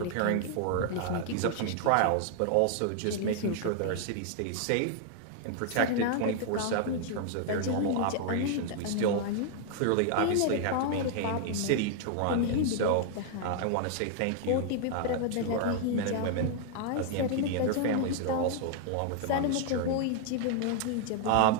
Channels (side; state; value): both; different; correlation 0.00